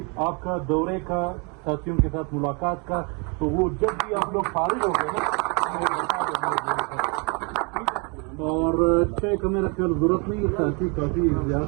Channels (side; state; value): left; quieter; 32.8 dB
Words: آپ کا دورے کا, ساتھیوں کے ساتھ ملاقات کا. تو وہ جب بھی آپ لوگ فارغ ہو گئے نا, اور 6 کا میرا خیال ضرورت نہیں, ساتھی کافی